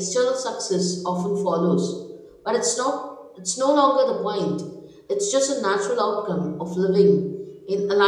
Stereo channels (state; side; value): identical; both; correlation 1.00